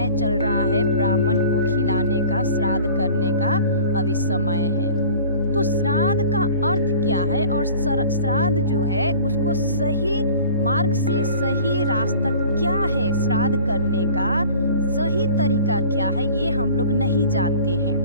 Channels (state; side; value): inverted; both; correlation -0.45